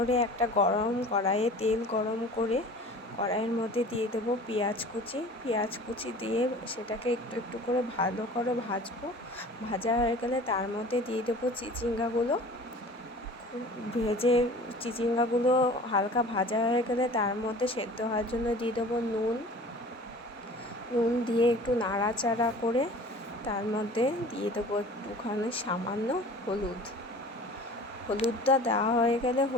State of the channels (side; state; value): both; normal; correlation 0.43